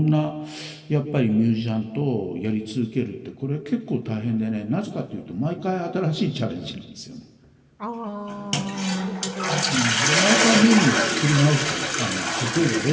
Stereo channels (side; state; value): both; identical; correlation 1.00